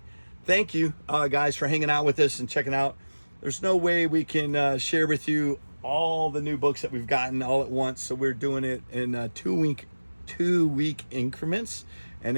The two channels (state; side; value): inverted; both; correlation -1.00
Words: Thank you, guys, for hanging out with us and checking out. There's no way we can share with you all the new books that we've gotten all at once, so we're doing it in two-week increments, and